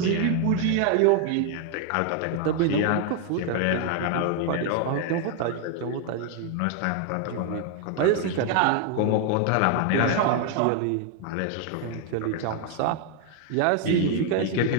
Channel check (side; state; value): both; different; correlation 0.00